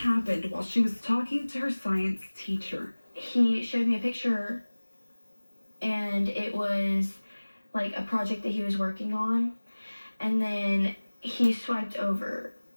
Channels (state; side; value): inverted; both; correlation -1.00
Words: while she was talking to her science teacher. He showed me a picture, and it was like a project that he was working on. And then he swiped over,